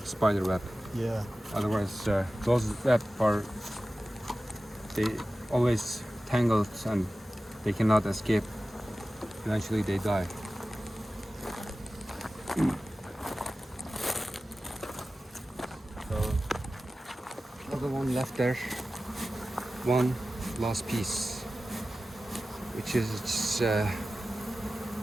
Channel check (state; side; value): normal; both; correlation 0.95